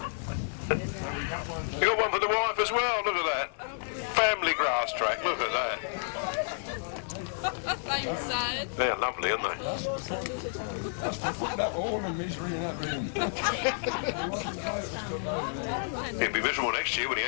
You got one for the wife as well, look at that. Family Grasstrack, look at that. Same side. They're lovely, aren't they? That's to put that all the misery in that room. He'll be miserable next year when he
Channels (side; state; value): right; silent; 57 dB below the other